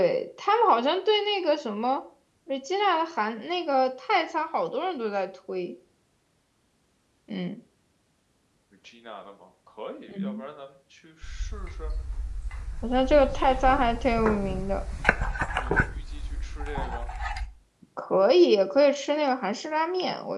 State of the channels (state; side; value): identical; both; correlation 1.00